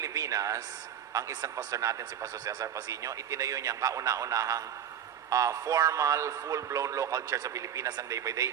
ang isang pastor natin, si Pastor Cesar Pasino, itinayo niya ang kauna-unahang formal, full-blown local church sa Pilipinas ang day by day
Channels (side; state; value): left; quieter; 9.3 dB